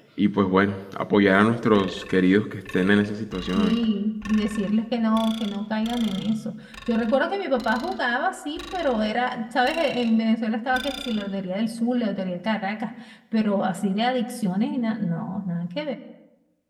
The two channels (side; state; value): both; identical; correlation 1.00